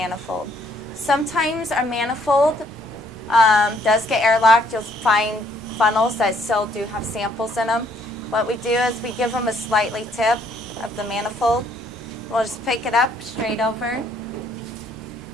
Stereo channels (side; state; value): both; normal; correlation 0.66